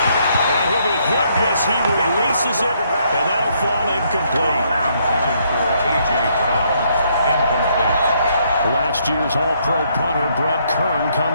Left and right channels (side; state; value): both; inverted; correlation -0.71